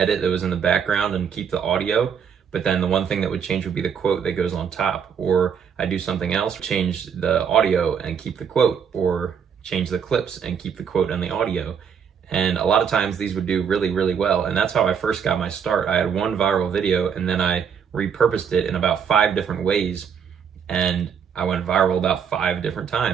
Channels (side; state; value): left; quieter; 7.3 dB